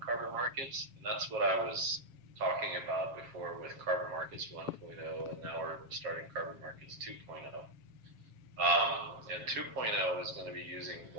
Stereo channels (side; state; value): left; late; 7.3 ms